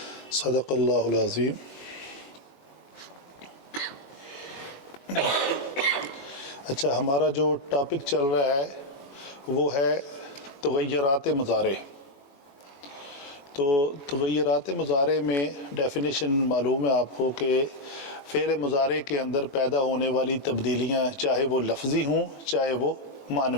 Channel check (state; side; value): late; right; 21 ms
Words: صدق اللہ العظیم۔ اچھا، ہمارا جو ٹاپک چل رہا ہے وہ ہے تغیرات مضارع۔ تو تغیرات مضارع میں ڈیفینیشن معلوم ہے آپ کو کہ فعل مضارع کے اندر پیدا ہونے والی تبدیلیاں چاہے وہ لفظی ہوں چاہے وہ